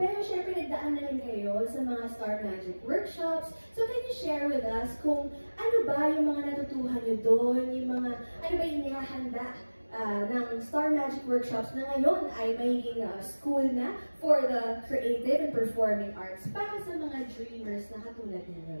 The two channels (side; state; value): both; inverted; correlation -1.00